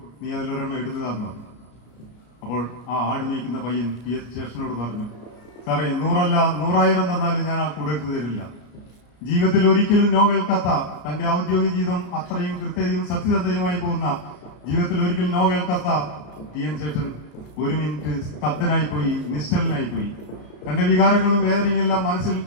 നീ അതിലൊരെണ്ണം എടുത്തു തന്നു. അപ്പോൾ ആ ആട് മേയ്ക്കുന്ന പയ്യൻ TN ശേഷനോട് പറഞ്ഞു, സാറേ 100 അല്ല 100,000 തന്നാലും ഞാൻ ആ കൂടെ എടുത്തു തരില്ല. ജീവിതത്തിൽ ഒരിക്കലും നോ കേൾക്കാത്ത, തന്റെ ഔദ്യോഗിക ജീവിതം അത്രയും കൃത്യതയും സത്യസന്ധതയുമായി പോകുന്ന, ജീവിതത്തിൽ ഒരിക്കലും നോ കേൾക്കാത്ത TN ശേഷൻ 1 മിനിറ്റ് സ്തബ്ധനായി പോയി, നിശ്ചലനായി പോയി. തന്റെ വികാരങ്ങളും വേദനയും എല്ലാം മനസ്സിൽ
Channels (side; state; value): right; late; 33 ms